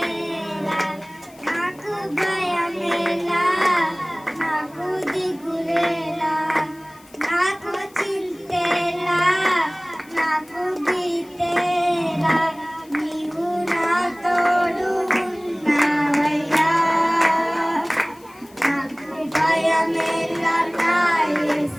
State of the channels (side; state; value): left; noise; hiss, 26 dB below the sound